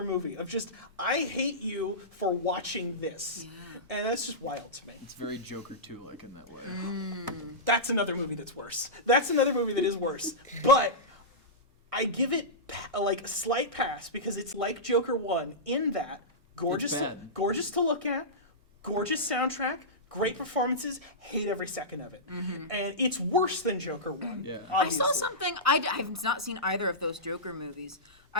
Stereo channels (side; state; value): both; normal; correlation -0.15